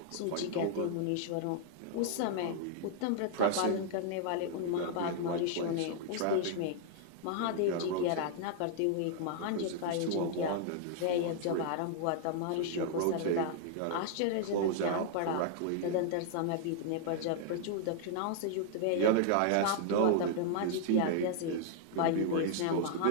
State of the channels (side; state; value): both; different; correlation -0.01